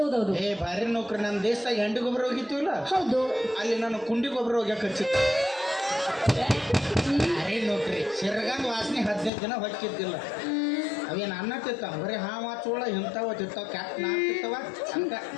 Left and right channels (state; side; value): drops out; right; at 9.3 s